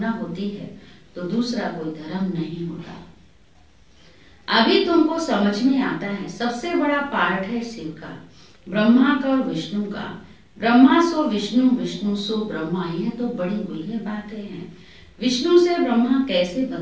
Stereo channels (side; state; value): both; identical; correlation 1.00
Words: होती है तो दूसरा कोई धर्म नहीं होता। अभी तुमको समझ में आता है सबसे बड़ा पार्ट है शिव का, ब्रह्मा का और विष्णु का। ब्रह्मा सो विष्णु, विष्णु सो ब्रह्मा, यह तो बड़ी गुह्य बातें हैं। विष्णु से ब्रह्मा कैसे